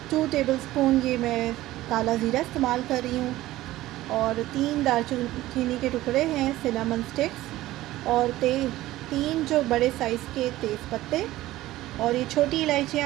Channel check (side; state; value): left; quieter; 16.2 dB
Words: 2 टेबलस्पून ये मैं काला ज़ीरा इस्तेमाल कर रही हूँ, और 3 दालचीनी के टुकड़े हैं, सिनेमन स्टिक्स, और 3 जो बड़े साइज़ के तेज़ पत्ते, और ये छोटी